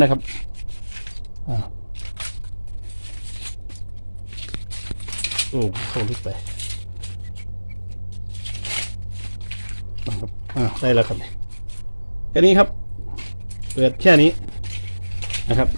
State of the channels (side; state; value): both; inverted; correlation -1.00